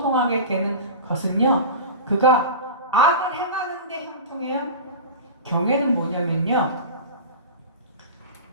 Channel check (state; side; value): inverted; both; correlation -0.31